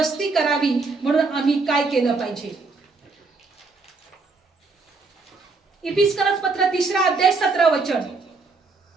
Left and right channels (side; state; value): left; quieter; 4.1 dB